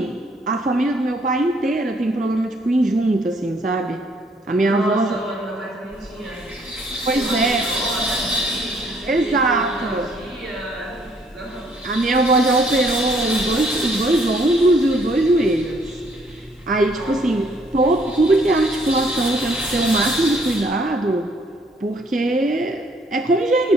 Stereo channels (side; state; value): both; normal; correlation 0.65